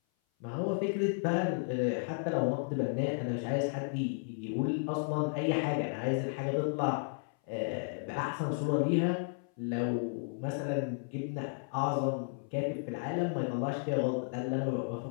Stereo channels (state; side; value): silent; right; 55 dB below the other